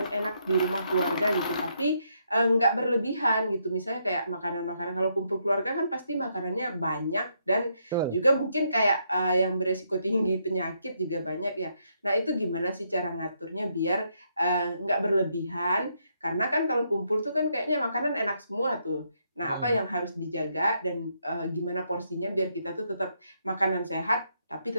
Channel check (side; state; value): both; inverted; correlation -0.76